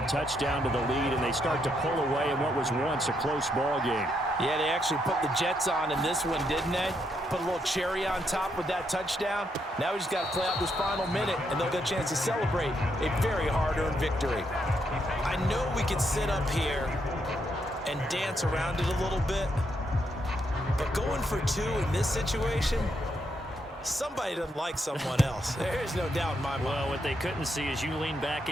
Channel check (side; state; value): both; normal; correlation 0.78